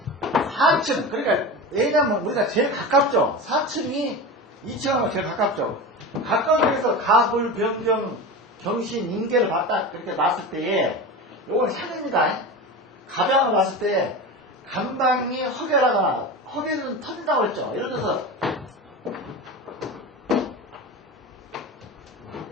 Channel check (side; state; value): both; normal; correlation 0.27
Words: 4층, 그러니까 왜냐면 우리가 제일 가깝죠. 4층이 2층하고 제일 가깝죠. 가까운 데서 가불, 변경, 경신, 인계를 봤다, 그렇게 놨을 때에, 요건 산입니다. 가병을 놨을 때, 간방이 허계는 터진다고 했죠. 예를 들어서,